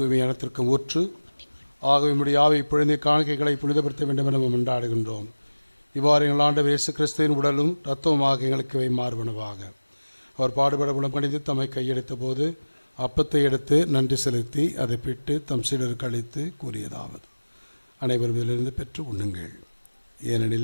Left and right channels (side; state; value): both; inverted; correlation -1.00